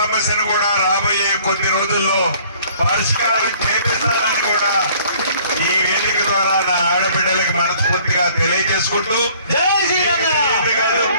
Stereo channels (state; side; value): inverted; both; correlation -0.55